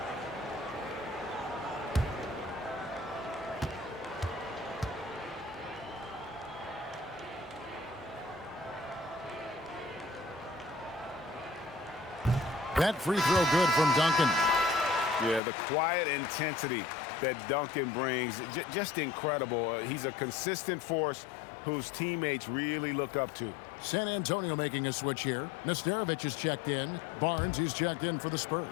That free throw good from Duncan. Yeah, the quiet intensity that Duncan brings, just incredible. He's a consistent force whose teammates really look up to. San Antonio making a switch here. Nesterovic is checked in. Barnes is checked in for the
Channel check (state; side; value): drops out; right; at 15.4 s